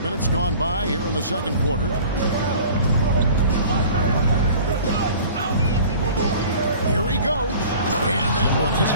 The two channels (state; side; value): inverted; both; correlation -0.45